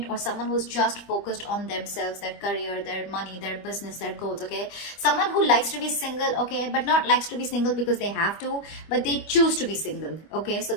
or someone who's just focused on themselves, their career, their money, their business, their goals, okay? Someone who likes to be single, okay, but not likes to be single because they have to, but they choose to be single, okay? So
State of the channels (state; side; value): late; right; 25 ms